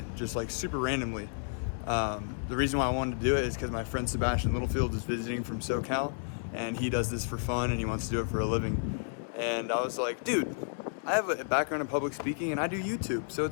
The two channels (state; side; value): silent; right; digital silence